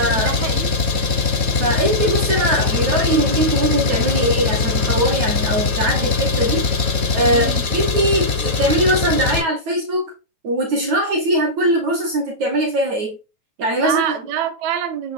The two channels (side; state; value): left; late; 9.2 ms